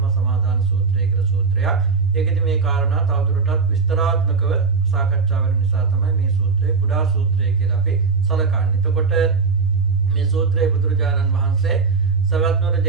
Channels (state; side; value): quieter; left; 4.7 dB